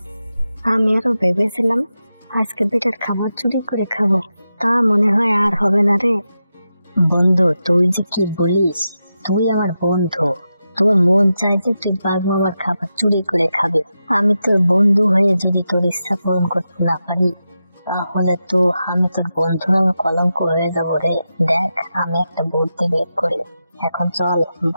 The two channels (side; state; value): both; inverted; correlation -0.89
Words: আমি আরো ভেবেছিলাম আজকে বেটার খাবার চুরি করে খাবো, তা মনে হয় আর হবে না রে। বন্ধু তুই যে কি বলিস, তুই আমার বন্ধু, তোর মন চাই যে তুই বাঘ মামার খাবার চুরি করে খাবে। আমি তোর বন্ধু হয়ে যদি তোর ইচ্ছা পূরণ করতে না পারি, তাহলে তো আমি তোর বন্ধু নামে কলঙ্ক হয়ে যাবো রে। দেখ, আমি একটা বুদ্ধি বের করি, এখন চল